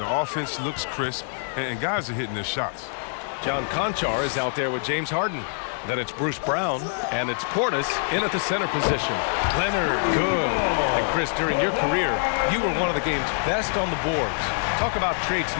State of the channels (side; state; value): right; silent; digital silence